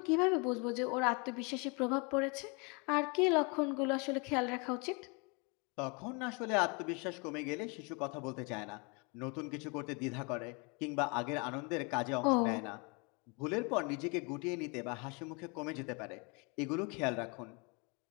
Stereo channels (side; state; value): right; quieter; 31.4 dB